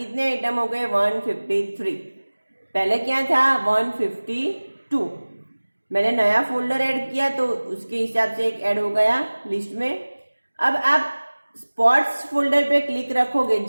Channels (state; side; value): inverted; both; correlation -1.00